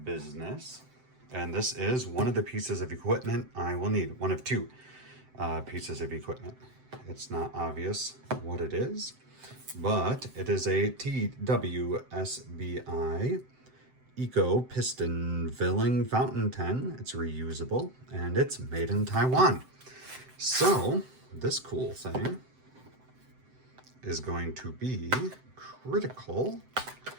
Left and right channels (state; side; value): late; left; 7.8 ms